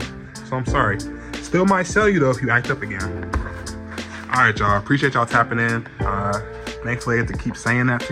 So I'm sorry. Still might sell you though if you act up again. Alright, y'all. Appreciate y'all tapping in. Thankfully I get to keep saying that to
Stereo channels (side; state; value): both; identical; correlation 1.00